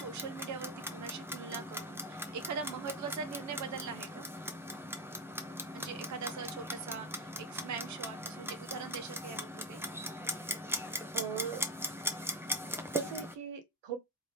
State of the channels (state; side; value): normal; both; correlation 0.06